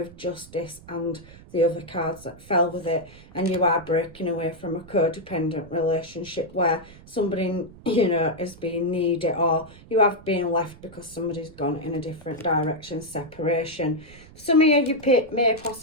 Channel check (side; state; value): right; noise; rumble, 21 dB below the sound